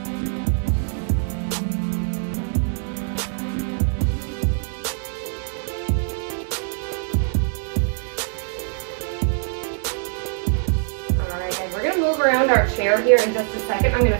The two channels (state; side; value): silent; left; digital silence